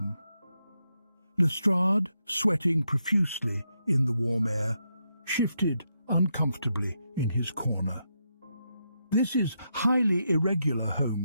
Lestrade, sweating profusely in the warm air, shifted uncomfortably in his corner. "This is highly irregular,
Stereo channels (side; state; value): both; inverted; correlation -0.82